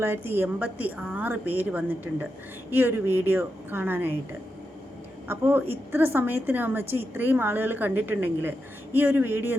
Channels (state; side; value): normal; both; correlation 0.87